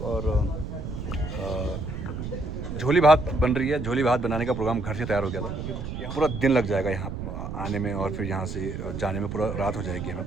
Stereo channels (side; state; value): right; noise; rumble, 6 dB below the sound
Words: और झोली भात बन रही है। झोली भात बनाने का प्रोग्राम घर से तैयार हो गया था। पूरा दिन लग जाएगा यहाँ आने में और फिर यहाँ से जाने में पूरा रात हो जाएगी हमें